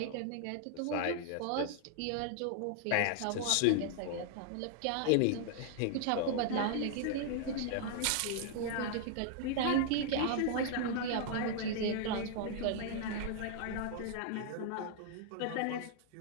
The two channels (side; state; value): both; different; correlation 0.00